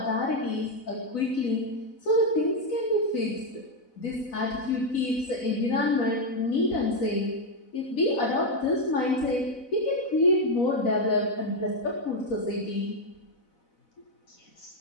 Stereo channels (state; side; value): late; right; 4.0 ms